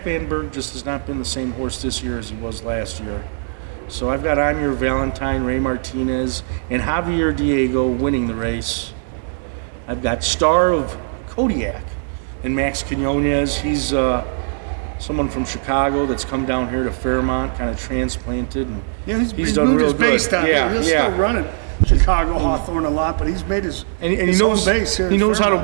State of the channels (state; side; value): silent; left; digital silence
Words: Van Berg just has not been the same horse this year as he was last year. So I've got I'm Your Valentine, Ray Martinez, and Javier Diego winning the race. I've got Star of Kodiak and Max Quinones. He's someone from Chicago that's come down here to Fairmont, kind of transplanted. And he's done moved real his base good. down here. He's still running Chicago, Hawthorne a lot, but he's made his and he knows base here. He knows how to